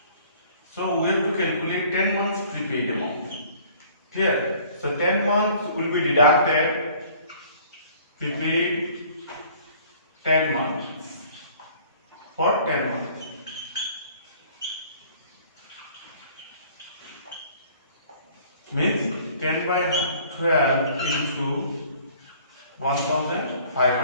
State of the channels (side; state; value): both; inverted; correlation -0.53